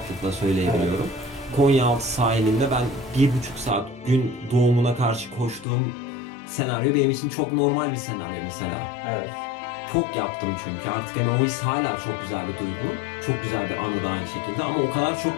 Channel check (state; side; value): drops out; right; at 5.7 s